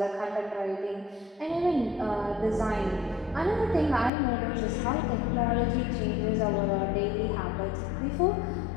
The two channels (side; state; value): right; drops out; at 4.1 s